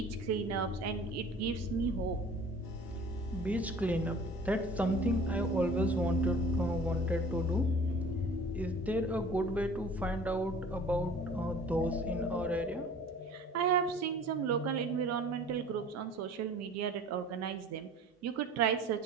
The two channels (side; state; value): both; normal; correlation 0.47